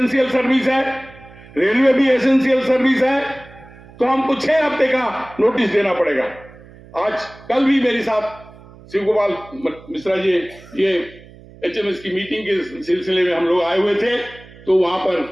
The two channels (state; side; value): noise; right; hum, 21 dB below the sound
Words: सर्विस है, रेलवे भी एसेंशियल सर्विस है, तो हमको 6 हफ्ते का नोटिस देना पड़ेगा। आज कल भी मेरे साथ शिव गोपाल मिश्रा जी ये एचएमएस की मीटिंग के सिलसिले में हम लोग आए हुए थे, तो वहां